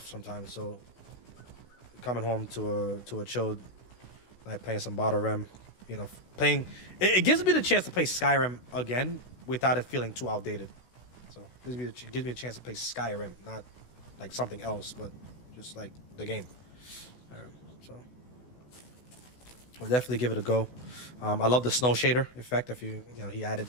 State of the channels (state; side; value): late; right; 16 ms